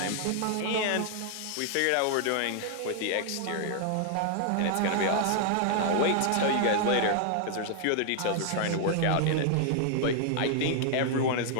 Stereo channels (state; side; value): different; both; correlation 0.00